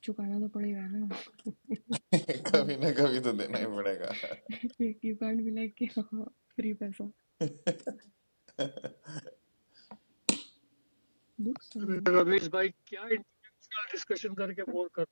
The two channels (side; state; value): both; inverted; correlation -1.00